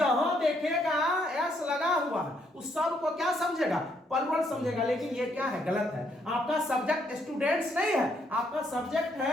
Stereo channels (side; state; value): both; normal; correlation 0.72